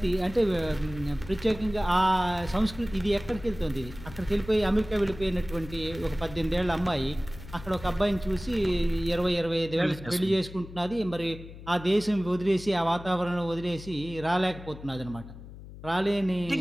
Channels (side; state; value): left; noise; hum, 15 dB below the sound